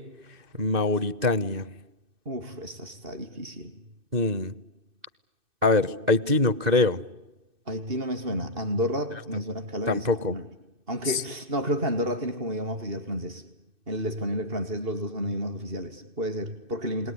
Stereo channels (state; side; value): late; left; 2.6 ms